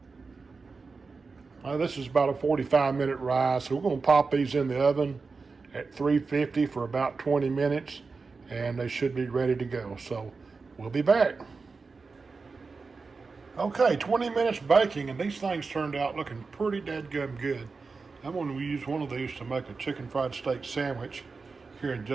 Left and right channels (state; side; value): quieter; left; 4.4 dB